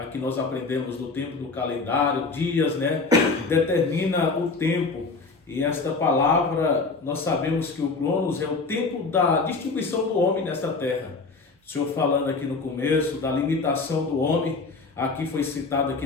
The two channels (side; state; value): right; quieter; 4.0 dB